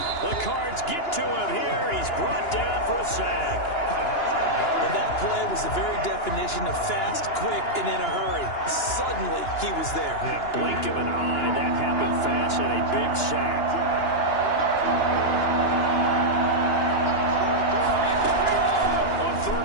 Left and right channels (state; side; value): late; right; 2.9 ms